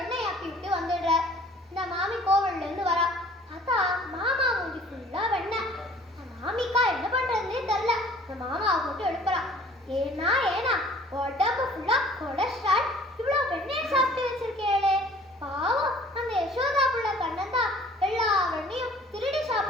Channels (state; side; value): normal; both; correlation 0.51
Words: ஆக்கி விட்டு வந்துடுற. இந்த மாமி கோவில்ல இருந்து வரா. பார்த்தா மாமா மூஞ்சி ஃபுல்லா வெண்ணெய். மாமிக்கா என்ன பண்றதுன்னே தெரியல. இந்த மாமாவை போட்டு எழுப்புறா. ஏன்னா உடம்பு ஃபுல்லா கொலஸ்ட்ரால், இவ்வளவு வெண்ணெயை சாப்பிட்டு வச்சிருக்கேளே. பாவம் அந்த யசோதா புள்ள கண்ணன் தான் எல்லா வெண்ணையும் திருடி